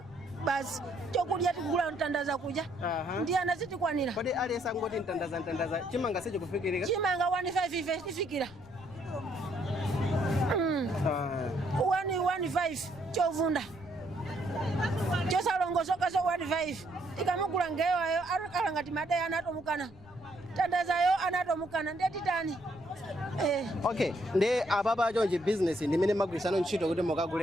basi chokudya tikugula mtandaza kuja. Ndiye anazitikwanira. Kodi aliyesa ngoti mtandaza chimanga secho kufikirika? Chimanga 15 tifikira. 115 chovunda. Chosalongosoka so 15 ikamugula ngewayo akala ngati madai anatomukana tandazayo anatomukana ndetitani Okay, ndi ababa chonje business ndimene magwirisano ntchito kuti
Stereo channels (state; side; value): noise; left; rumble, 22 dB below the sound